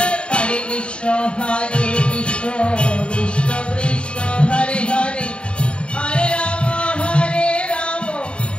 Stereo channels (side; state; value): right; late; 0.055 ms